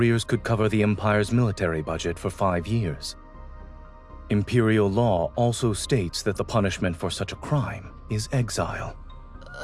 could cover the Empire's military budget for 5 years. Imperial law also states that the punishment for such a crime is exile.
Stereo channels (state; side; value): identical; both; correlation 1.00